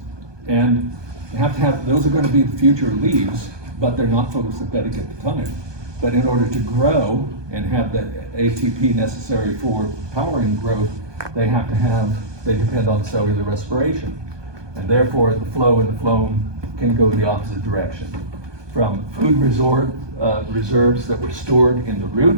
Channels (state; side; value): late; left; 1.2 ms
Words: and you have to have, those are going to be the future leaves, but they're not photosynthetic at the time. But in order to grow and have the ATP necessary for powering growth, they depend on cellular respiration. And therefore, the flow in the phloem can go the opposite direction. From food reserves that were stored in the